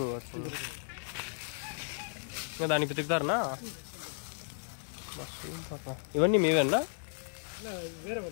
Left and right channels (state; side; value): silent; right; 55 dB below the other